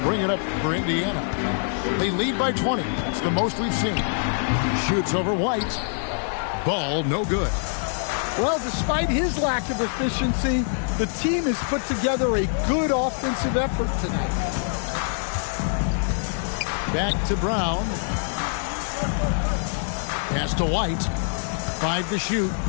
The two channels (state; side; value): silent; right; 62 dB below the other